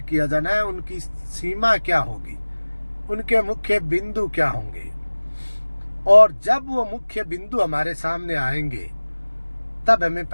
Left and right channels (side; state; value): both; inverted; correlation -1.00